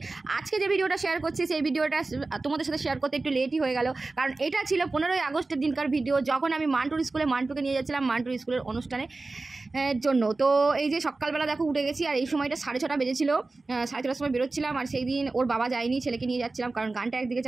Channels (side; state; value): left; quieter; 3.5 dB